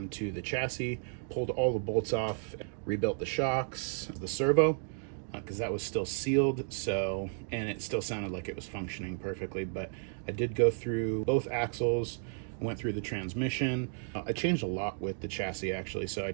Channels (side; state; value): left; silent; 56 dB below the other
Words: to the chassis, pulled all the bolts off, rebuilt the shocks, the servo, because that was still sealed, so, and it still sounded like it was functioning perfectly, but I did go through both axles, went through the transmission. I changed a lot with the chassis actually, so I